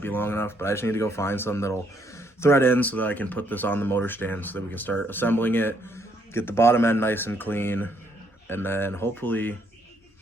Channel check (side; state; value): both; normal; correlation 0.71